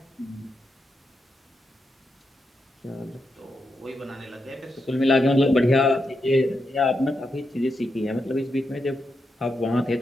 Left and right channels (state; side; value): normal; both; correlation 0.85